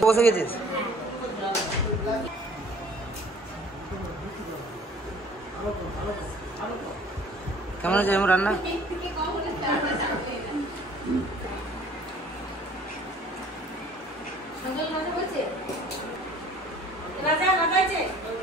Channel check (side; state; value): both; normal; correlation 0.52